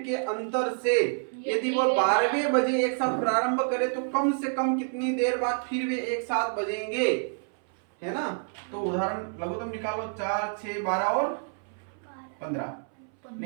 के अंतर से यदि वो 12वें बजे एक साथ प्रारंभ करे तो कम से कम कितनी देर बाद फिर वे एक साथ बजेंगे, है ना? तो उदाहरण लघुत्तम निकालो। 4, 6, 12 और 15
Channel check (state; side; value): silent; left; 59 dB below the other